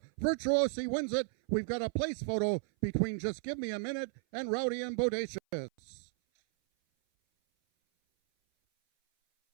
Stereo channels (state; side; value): silent; left; 55 dB below the other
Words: Virtuosi wins it. We've got a place photo between Just Give Me a Minute and Rowdy and Bodacious.